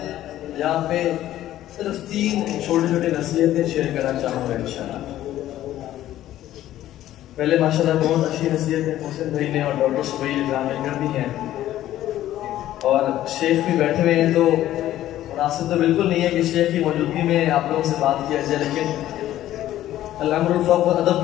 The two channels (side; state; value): right; quieter; 13.4 dB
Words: یہاں پہ صرف 3 چھوٹی نصیحتیں شیئر کرنا چاہوں گا انشاءاللہ۔ پہلے ماشاءاللہ بہت اچھی نصیحتیں محسن بھائی نے اور ڈاکٹر سبیل اکرام نے کر دی ہیں، اور شیخ بھی بیٹھے ہوئے ہیں، تو مناسب تو بالکل نہیں ہے کہ شیخ کی موجودگی میں آپ لوگوں سے بات کیا جائے، لیکن الامر الفاظ و ادب